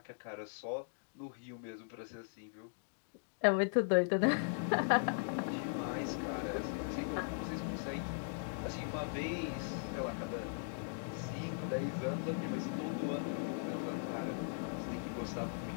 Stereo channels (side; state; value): right; silent; digital silence